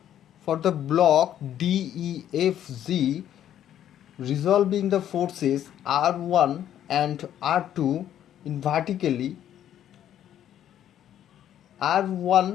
For the block DEFG, resolving the forces R1 and R2 in vertically,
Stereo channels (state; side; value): quieter; right; 10.9 dB